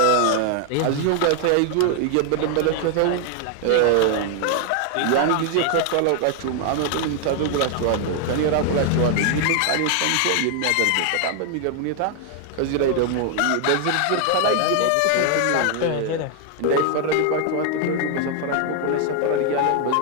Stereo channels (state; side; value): different; both; correlation 0.00